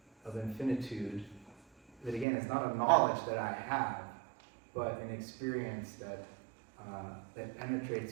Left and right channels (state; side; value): drops out; left; at 2.2 s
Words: of infinitude that, again, is not a knowledge that I have, but an experience that